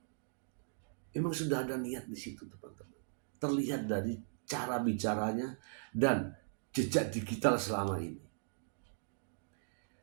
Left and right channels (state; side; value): silent; left; digital silence